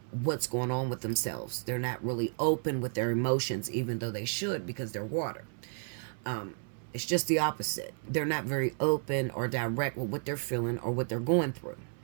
what's going on with themselves. They're not really open with their emotions, even though they should, because they're water. It's just the opposite. They're not very open or direct with what they're feeling or what they're going through.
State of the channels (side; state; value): left; silent; 56 dB below the other